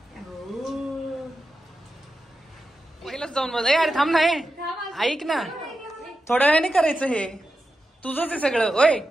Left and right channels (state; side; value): normal; both; correlation 0.90